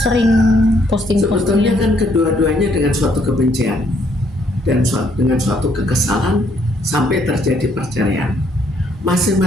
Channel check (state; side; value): normal; both; correlation 0.69